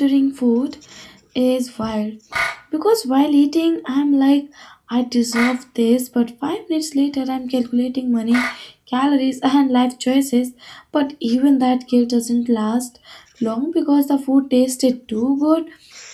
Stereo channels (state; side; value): identical; both; correlation 1.00